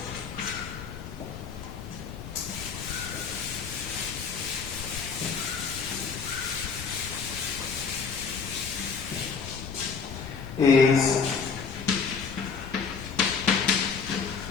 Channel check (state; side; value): quieter; right; 5.6 dB